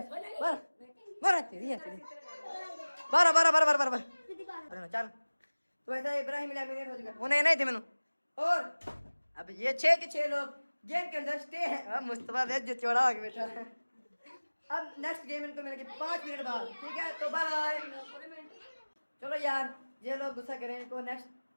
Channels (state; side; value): inverted; both; correlation -1.00